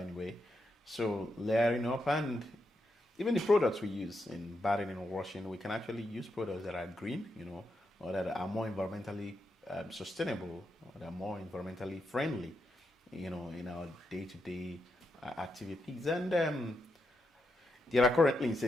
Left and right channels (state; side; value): normal; both; correlation 0.83